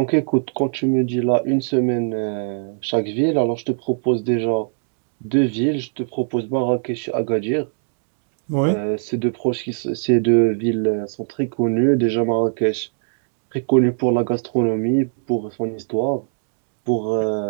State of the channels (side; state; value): left; silent; digital silence